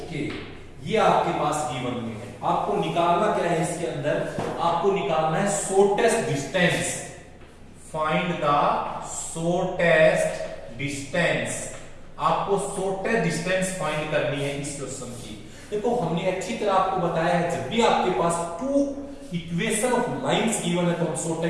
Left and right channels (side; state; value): both; identical; correlation 1.00